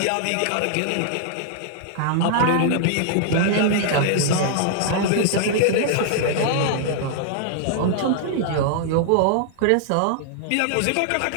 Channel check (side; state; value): both; different; correlation -0.01